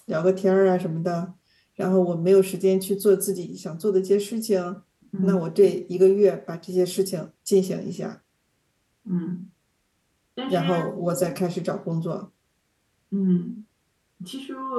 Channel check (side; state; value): both; identical; correlation 1.00